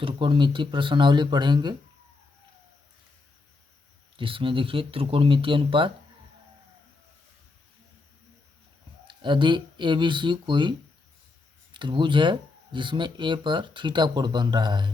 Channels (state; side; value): quieter; right; 3.7 dB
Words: प्रश्नावली पढ़ेंगे, जिसमें देखिए त्रिकोणमितीय अनुपात। यदि ABC कोई त्रिभुज है जिसमें A पर थीटा कोण बन रहा